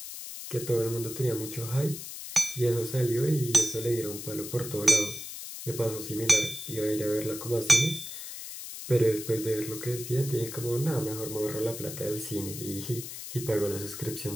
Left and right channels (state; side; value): noise; left; hiss, 9 dB below the sound